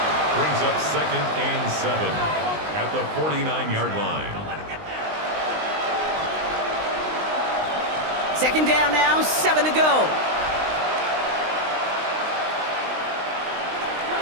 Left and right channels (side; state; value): left; late; 19 ms